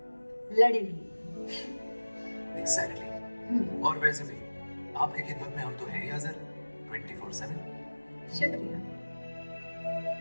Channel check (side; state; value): both; inverted; correlation -1.00